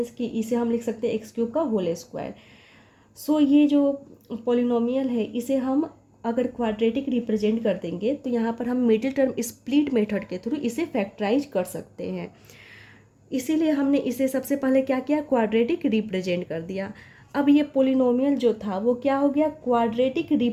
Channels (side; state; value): both; identical; correlation 1.00